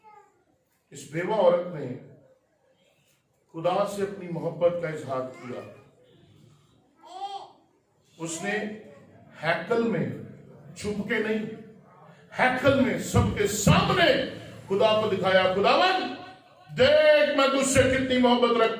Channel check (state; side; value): identical; both; correlation 1.00